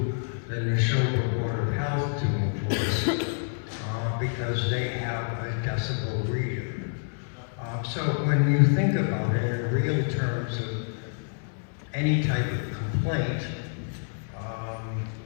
the Neshoba Board of Health to enforce because they have a decibel reader. So when you think about it in real terms of any type of complaint,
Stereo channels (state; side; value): silent; right; digital silence